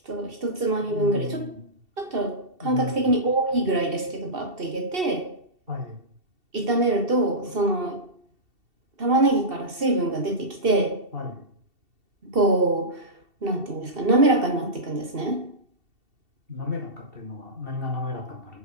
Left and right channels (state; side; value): late; left; 2.7 ms